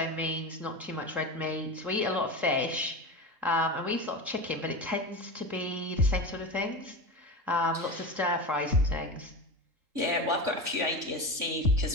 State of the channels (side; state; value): left; late; 3.8 ms